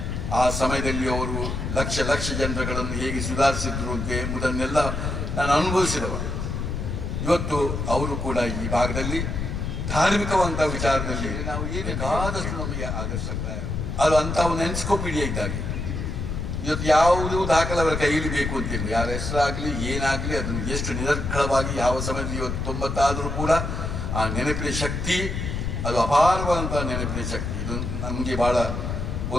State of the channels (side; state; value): left; noise; rumble, 3 dB below the sound